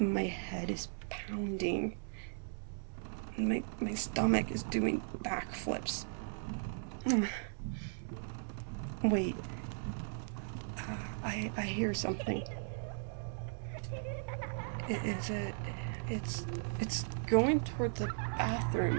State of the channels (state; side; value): silent; left; digital silence